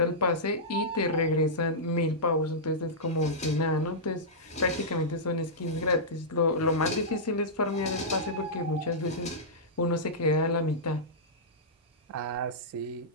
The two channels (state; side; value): normal; both; correlation -0.13